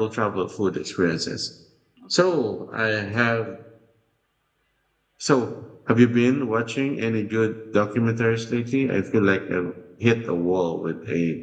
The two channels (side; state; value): both; identical; correlation 1.00